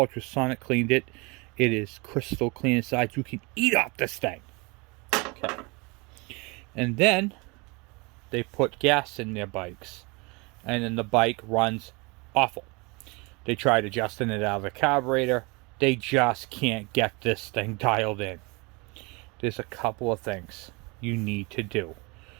cleaned it. It is crystal clean inside. You can eat off this thing. Okay. And then they put gas in their bikes. And then the bike runs awful. They tried adjusting it out of the carburetor. They just can't get this thing dialed in. There's a couple of things you need to do.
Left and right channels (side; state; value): left; quieter; 27.6 dB